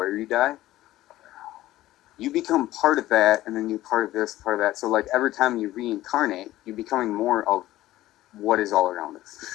you die, you become part of that, and then you part of this, part of that. So like every time you reincarnate, you're becoming more of what is all around us.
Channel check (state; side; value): quieter; right; 15.5 dB